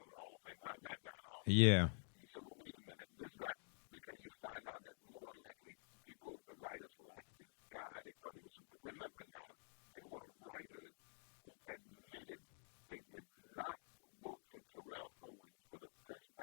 in the Hall of Fame? How's that guy in the Hall of Fame? Yeah. And you say, well, wait a minute. This guy, because you find out that more than likely people, the writers liked this guy. They thought he was remember now, there were writers who admitted they did not vote for Terrell Owens for the first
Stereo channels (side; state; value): right; silent; digital silence